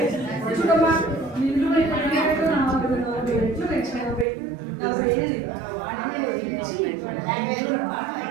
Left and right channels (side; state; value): left; drops out; at 4.2 s